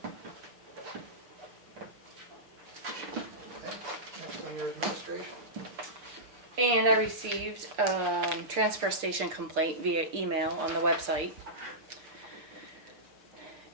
Okay, next on your administration. And I received a transfer station complaint via email on the website.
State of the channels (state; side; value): late; left; 6.8 ms